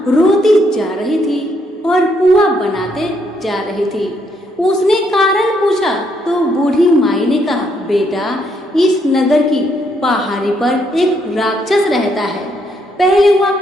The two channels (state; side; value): normal; both; correlation 0.73